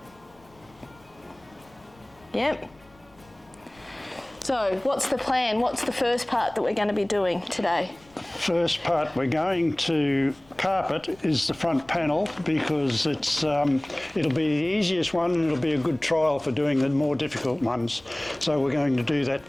Yep. So what's the plan? What's the first part that we're going to be doing today? First part we're going to carpet is the front panel because it's it'll be the easiest one and it'll be a good trial for doing the more difficult ones. So we're going to do that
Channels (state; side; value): noise; left; rumble, 29 dB below the sound